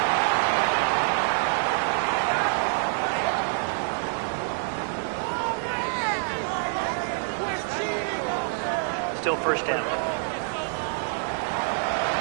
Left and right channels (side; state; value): left; silent; 59 dB below the other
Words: Still first down.